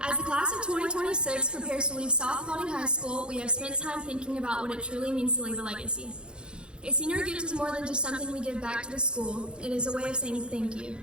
As the class of 2026 prepares to leave South Paulding High School, we have spent time thinking about what it truly means to leave a legacy. A senior gift is more than just something we give back to the school. It is a way of saying thank you.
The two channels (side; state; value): left; late; 0.052 ms